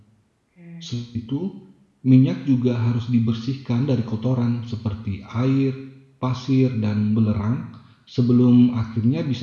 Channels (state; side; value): identical; both; correlation 1.00